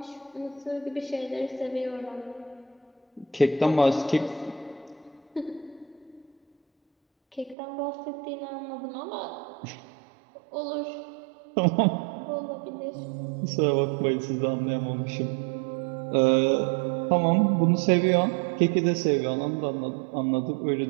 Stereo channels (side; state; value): left; drops out; at 7.6 s